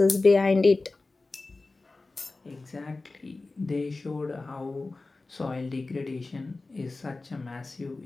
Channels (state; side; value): quieter; right; 3.4 dB